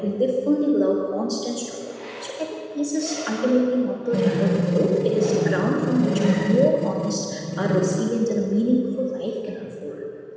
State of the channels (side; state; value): both; identical; correlation 1.00